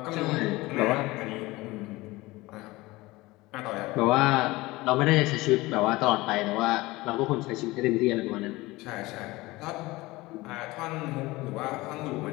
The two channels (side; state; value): right; quieter; 20.5 dB